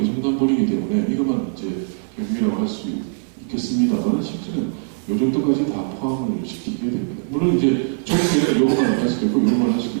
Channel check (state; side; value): silent; left; 59 dB below the other